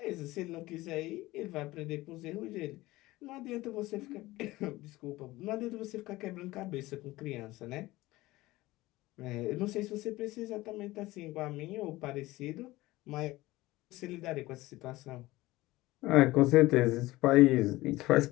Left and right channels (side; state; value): right; quieter; 18.7 dB